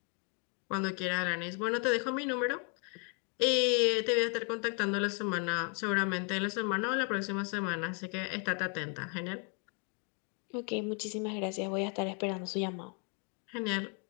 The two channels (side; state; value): right; quieter; 36.5 dB